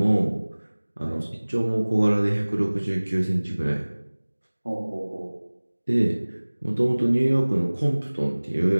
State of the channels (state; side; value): inverted; both; correlation -1.00